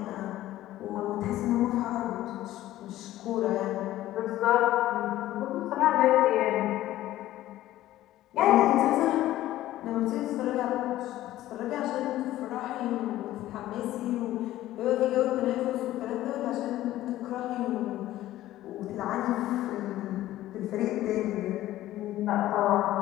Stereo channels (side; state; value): right; quieter; 14.6 dB